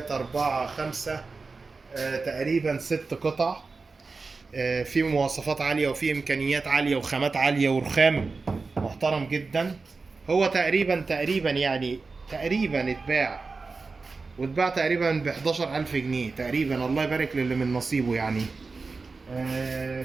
4 5 تقريبا 6 قطع، في مواصفات عالية وفي إمكانيات عالية وخامات عالية ورخام محترم جدا. هو تقريبا يعني تقريبا واتباع تقريبا ب 11,000 جنيه تقريبا. الله يبارك للي من نصيبه يعني.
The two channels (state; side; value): quieter; left; 4.2 dB